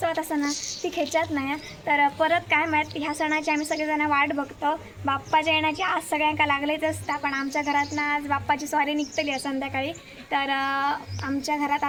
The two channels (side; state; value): both; identical; correlation 1.00